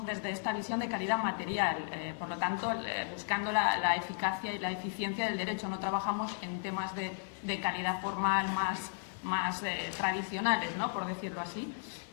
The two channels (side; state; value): right; silent; digital silence